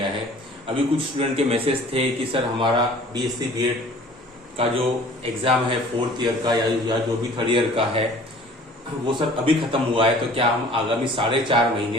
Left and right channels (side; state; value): both; normal; correlation 0.49